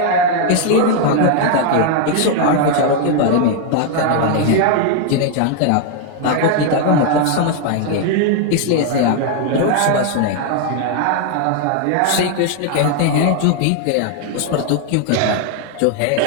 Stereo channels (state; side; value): different; both; correlation 0.00